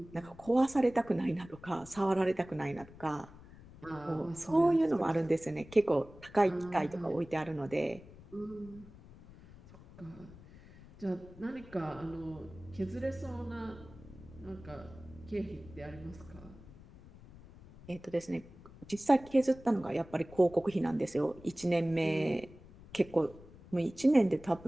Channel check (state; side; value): noise; left; rumble, 20 dB below the sound